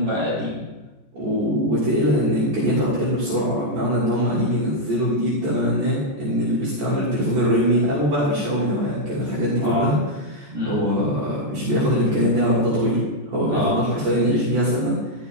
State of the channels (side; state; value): left; late; 14 ms